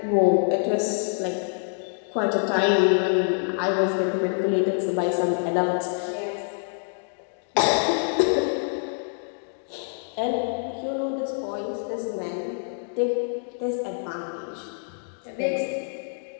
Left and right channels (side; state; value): right; silent; digital silence